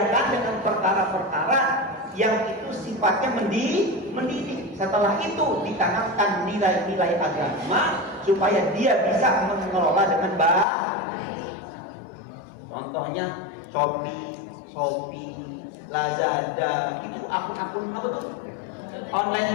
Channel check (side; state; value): right; drops out; at 10.7 s